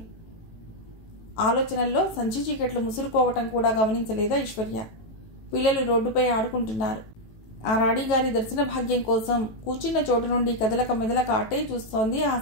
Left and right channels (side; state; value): right; late; 18 ms